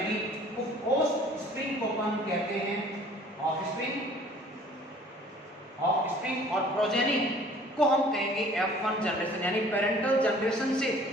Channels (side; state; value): both; normal; correlation 0.52